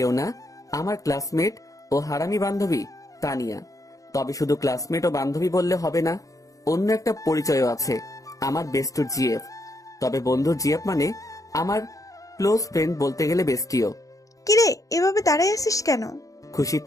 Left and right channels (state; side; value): late; right; 0.16 ms